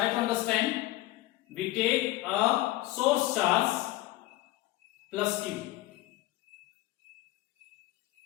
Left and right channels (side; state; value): right; quieter; 17.2 dB